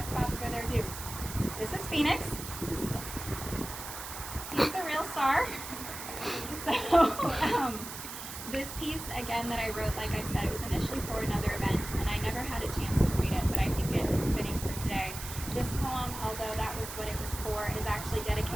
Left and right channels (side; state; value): right; noise; hiss, 9 dB below the sound